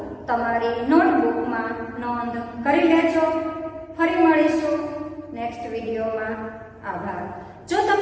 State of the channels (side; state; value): both; identical; correlation 1.00